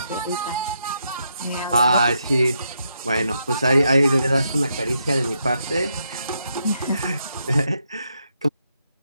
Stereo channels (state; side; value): inverted; both; correlation -0.80